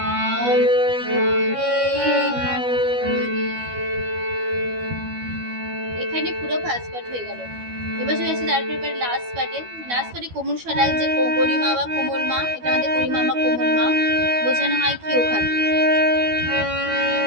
এখানে পুরো ফার্স্ট পার্ট হয়ে গেল। এবার চলে আসছে তারপরে লাস্ট পার্টে কোমল স্বরায় যে গরিমা বা কোমল মা, এটা আমাদের গরিমা বা কোমল মা বোঝানো হয় কি ওখানে।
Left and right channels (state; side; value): late; left; 12 ms